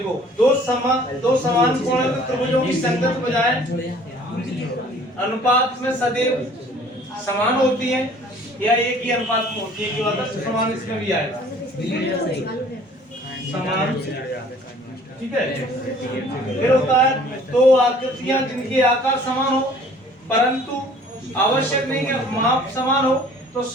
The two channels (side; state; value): both; normal; correlation 0.53